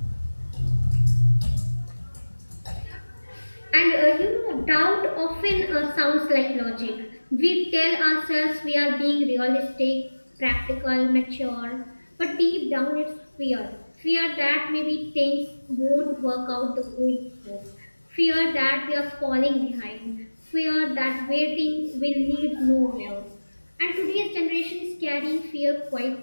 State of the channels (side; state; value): both; inverted; correlation -1.00